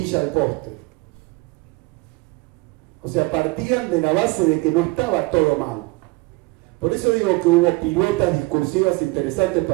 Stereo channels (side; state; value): left; quieter; 24.1 dB